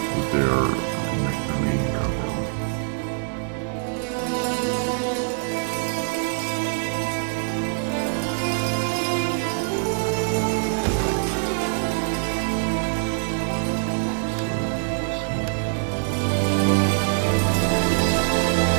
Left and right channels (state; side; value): silent; left; 63 dB below the other